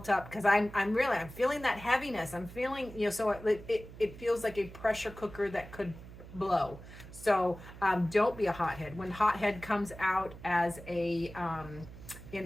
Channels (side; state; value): right; noise; hum, 16 dB below the sound